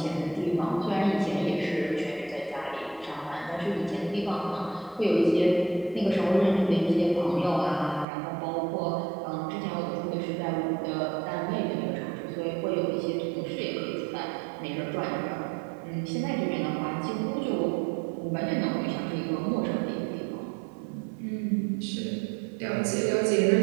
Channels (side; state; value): left; drops out; at 8.1 s